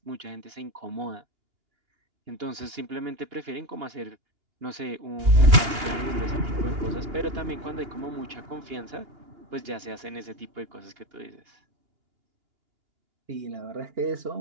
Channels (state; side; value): late; left; 2.8 ms